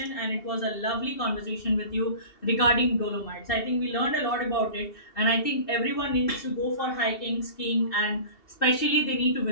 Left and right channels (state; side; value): late; right; 2.7 ms